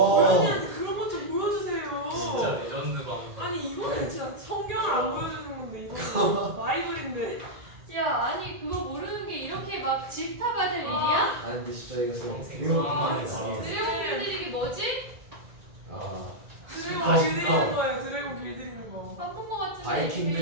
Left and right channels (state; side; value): late; left; 1.8 ms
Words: 그런 것 좀 보여주세요. 진짜 레전드 방송. 아니 이거는 진짜 성경을 안 보여주는 건데 이거 바이블인데. 야, 아니 그거 모르는 게 이렇게 막 질타받을 일이야? 아 근데 진짜 이거 정생. 와, 드래곤 드래곤 길들이기 뭐지? 아 드래곤 길들이는 거예요. 드래곤 길들이는 거. 바쁜 거 같은데 바이킹들이